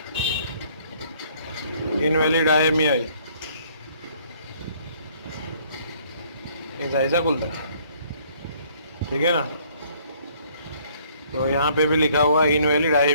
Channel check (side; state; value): both; inverted; correlation -0.62